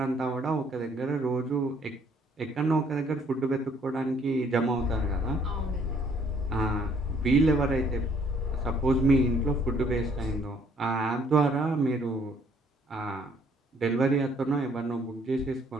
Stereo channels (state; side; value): normal; both; correlation 0.63